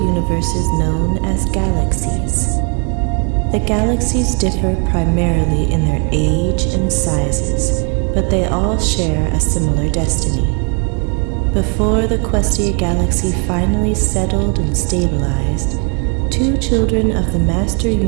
known as galaxies. The galaxies differ primarily in their age and sizes, but they all share a similar destiny. Before the Questia galaxy finally settled and stabilized, 2 children of the Master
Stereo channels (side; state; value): left; quieter; 34.9 dB